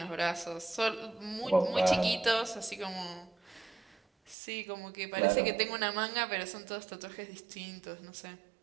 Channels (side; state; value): left; drops out; at 4.4 s